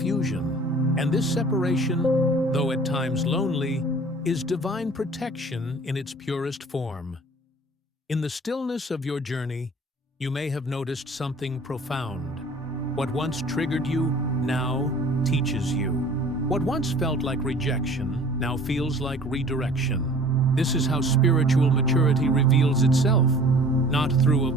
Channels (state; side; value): normal; both; correlation 0.48